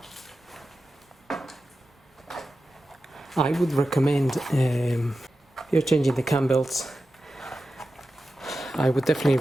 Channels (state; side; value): normal; both; correlation 0.92